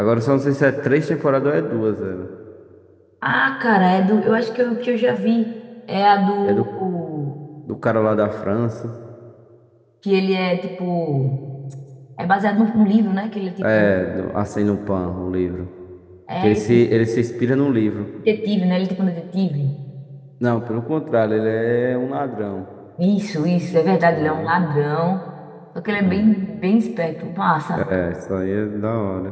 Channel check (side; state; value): both; identical; correlation 1.00